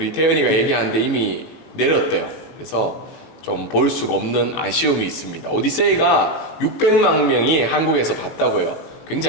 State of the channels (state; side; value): late; right; 18 ms